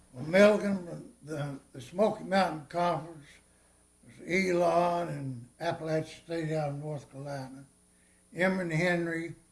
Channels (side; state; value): both; identical; correlation 1.00